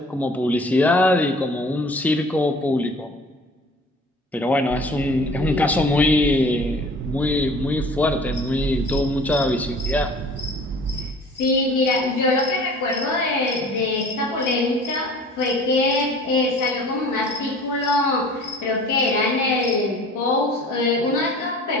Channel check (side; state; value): both; normal; correlation 0.47